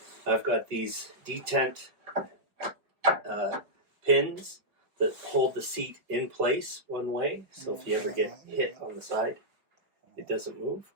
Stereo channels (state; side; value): late; left; 5.4 ms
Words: I've got these detent pins that hold the seat in place one way, so if you ever get hit on the side, it doesn't move.